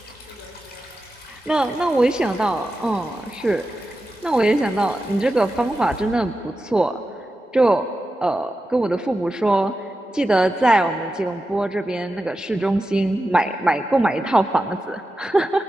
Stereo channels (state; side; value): normal; both; correlation 0.91